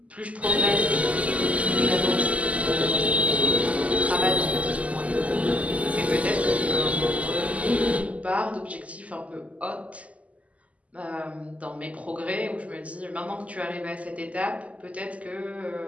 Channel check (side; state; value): left; late; 0.069 ms